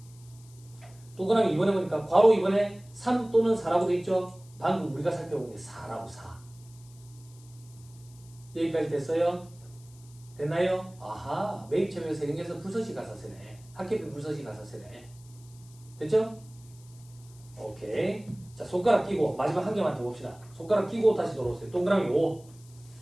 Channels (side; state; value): left; noise; hiss, 25 dB below the sound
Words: 동그라미 2번에 보니까 괄호 2번에 3 또는 4라고 돼 있죠? 방금 우리가 살펴본 게 4라고 4. 여기까지 됐어요? 됐나요? 아하, 매입처별 세금에서 불서시 가산세네. 학계비 불서시 가산세네. 됐죠? 오케이. 자, 손가락 끼고 마지막 한 개만 더 봅시다. 손가락 끼고 다시 돌아오세요. 동그라미 5.